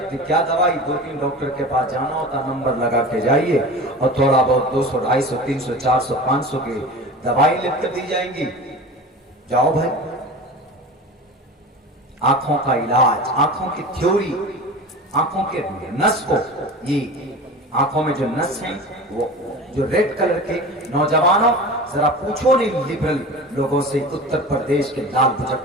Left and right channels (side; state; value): both; normal; correlation 0.34